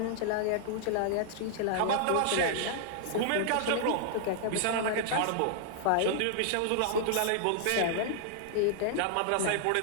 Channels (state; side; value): different; both; correlation -0.01